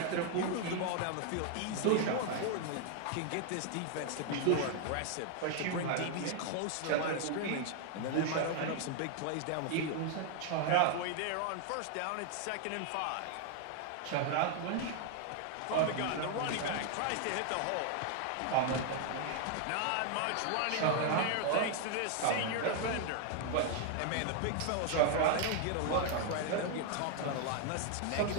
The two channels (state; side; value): different; both; correlation 0.00